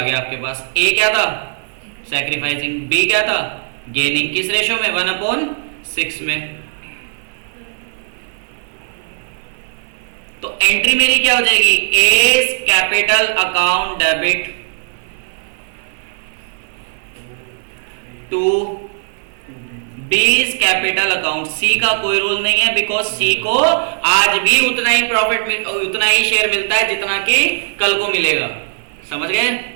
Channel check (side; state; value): left; silent; 56 dB below the other